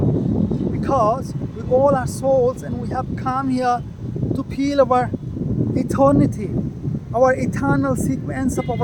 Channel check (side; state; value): both; identical; correlation 1.00